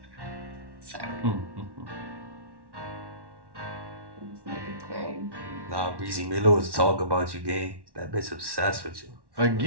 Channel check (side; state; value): left; late; 1.1 ms